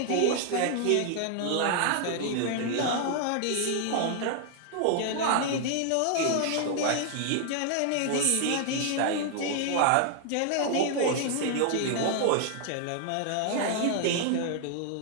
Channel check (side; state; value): both; different; correlation 0.00